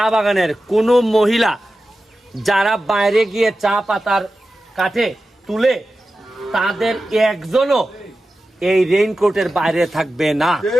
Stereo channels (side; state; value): both; normal; correlation 0.93